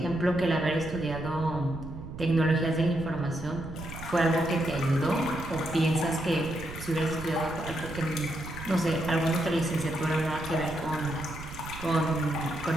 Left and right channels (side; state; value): right; noise; rumble, 12 dB below the sound